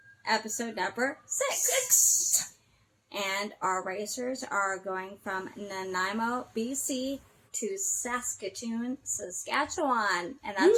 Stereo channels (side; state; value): both; identical; correlation 1.00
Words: episode number 6. And our racers are going from Nanaimo, BC to Saskatoon, Saskatchewan. And